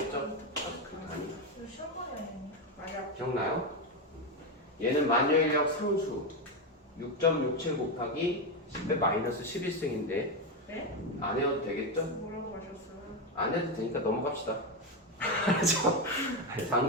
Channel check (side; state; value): both; normal; correlation 0.10